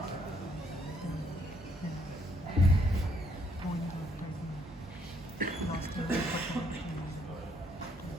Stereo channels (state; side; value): normal; both; correlation 0.69